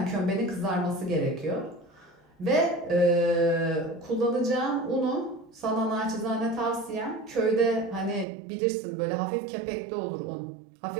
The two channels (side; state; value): left; drops out; at 8.2 s